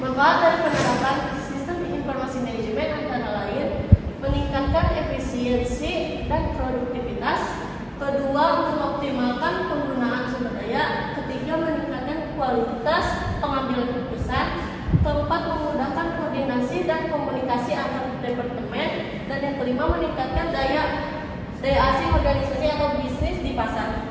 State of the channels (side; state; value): both; identical; correlation 1.00